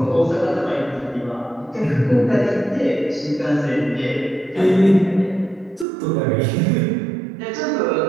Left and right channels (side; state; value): left; drops out; at 5.9 s